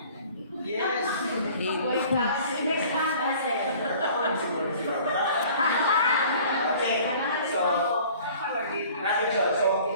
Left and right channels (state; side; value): inverted; both; correlation -0.50